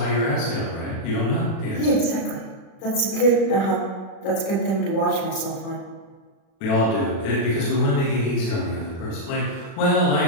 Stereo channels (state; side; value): late; right; 36 ms